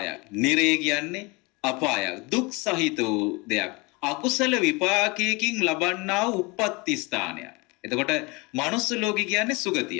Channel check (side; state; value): right; quieter; 26.8 dB